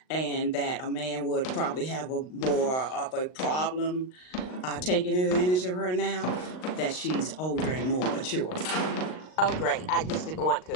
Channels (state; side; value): late; right; 39 ms